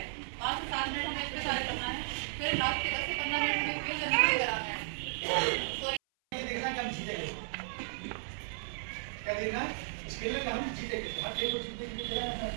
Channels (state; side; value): silent; left; 55 dB below the other